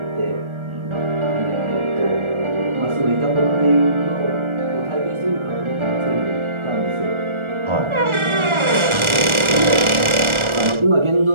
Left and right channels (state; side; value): late; left; 1.4 ms